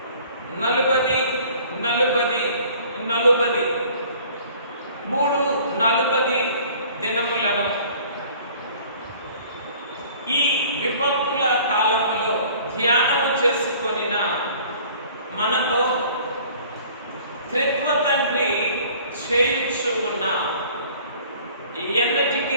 40 దినములను ఈ విపత్తుల కాలంలో ధ్యానము చేసుకొనిన మనతో త్రిత్వ తండ్రి చేయించు ఉన్న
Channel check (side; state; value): both; inverted; correlation -0.51